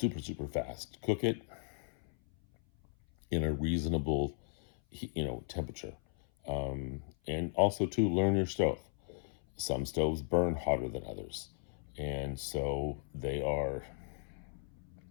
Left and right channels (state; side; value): silent; right; 54 dB below the other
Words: fast. Cook it in a reasonable, temperature. And also to learn your stove. Some stoves burn hotter than others, and so they are